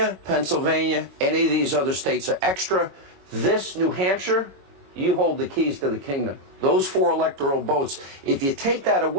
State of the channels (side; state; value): left; late; 22 ms